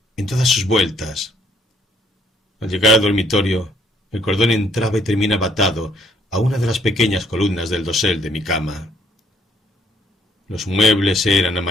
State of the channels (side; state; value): both; normal; correlation 0.67